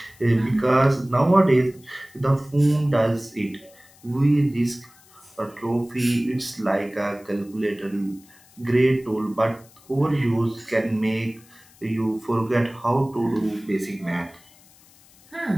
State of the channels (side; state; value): left; noise; hiss, 27 dB below the sound